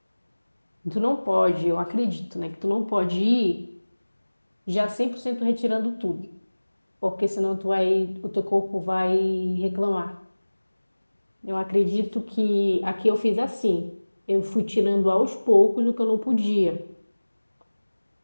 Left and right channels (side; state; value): both; inverted; correlation -1.00